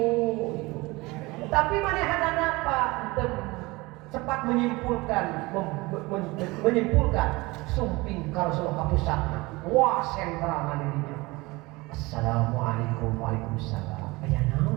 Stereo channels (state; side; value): quieter; left; 22.7 dB